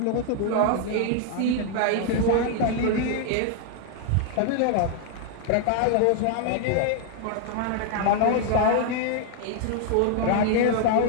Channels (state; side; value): different; both; correlation 0.00